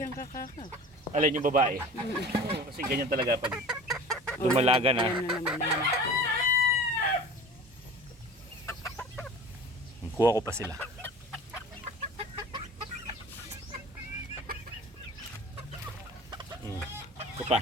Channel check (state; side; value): normal; both; correlation 0.40